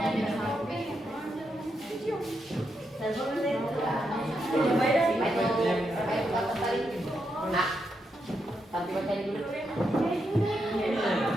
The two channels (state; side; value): normal; both; correlation 0.82